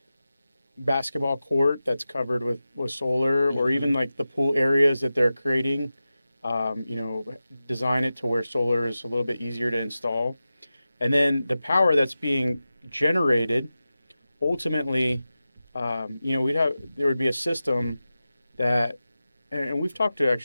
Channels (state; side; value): inverted; both; correlation -0.94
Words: basketball court that's covered with solar, or hmm, even like the pool areas that they're creating, um, you know, design it to where solar is a little bit easier to install. And then the power that's being generated, ultimately, there would be a system that, and we've talked to